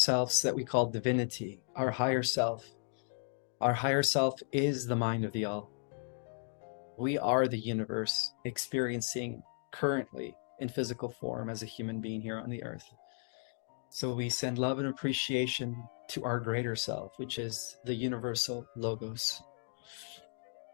that we call divinity, our higher self. Our higher self is the mind of the all. We are the universe experiencing currently in physical form as a human being here on the earth. So we send love and appreciation to our greater self, which is the universal logos.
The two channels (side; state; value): right; silent; digital silence